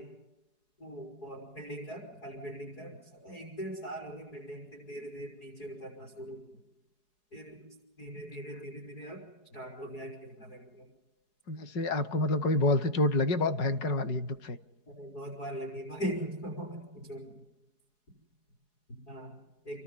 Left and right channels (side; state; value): right; late; 4.8 ms